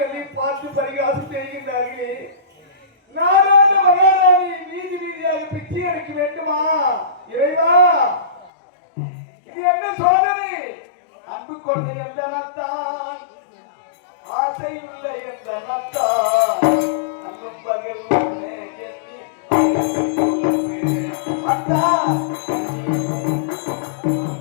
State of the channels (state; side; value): drops out; right; at 8.5 s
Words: என்னை பார்த்து பரிகாசம் செய்கின்றார்களே. நாடாண்ட மகாராணி வீதி வீதியாக பிச்சை எடுக்க வேண்டுமா? இறைவா, இது என்ன சோதனை? அன்பு கொண்ட எந்த நத்தான், ஆசை உள்ள எந்த நத்தான், அன்பும் பகல் ஒன்றே எண்ணி அத்தான்.